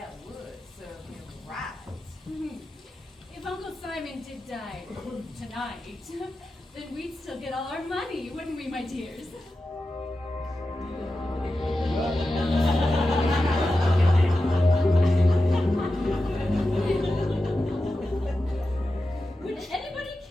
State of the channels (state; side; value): normal; both; correlation 0.92